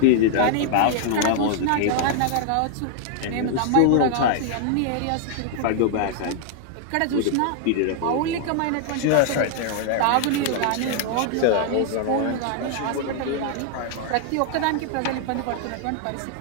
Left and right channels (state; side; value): different; both; correlation -0.01